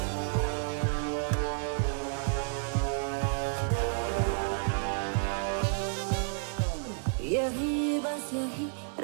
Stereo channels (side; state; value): left; silent; digital silence